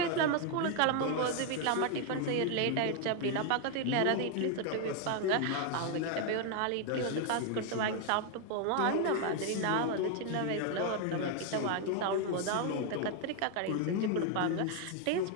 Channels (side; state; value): both; different; correlation 0.00